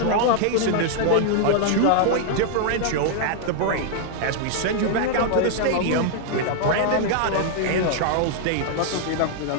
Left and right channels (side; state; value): both; different; correlation 0.00